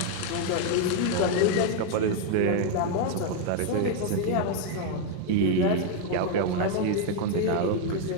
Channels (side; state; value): both; different; correlation 0.00